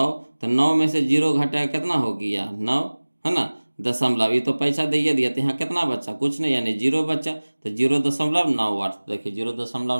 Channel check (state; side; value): inverted; both; correlation -1.00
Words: तो 9 में से 0 घटेगा कितना हो गया 9, है ना, दशमलव, ये तो पैसा दे दिया तो यहाँ कितना बचा, कुछ नहीं, यानी 0 बचा, तो 0.98, देखिए